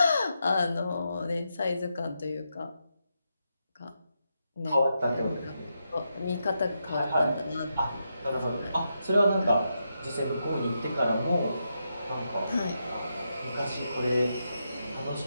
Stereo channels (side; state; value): both; inverted; correlation -0.84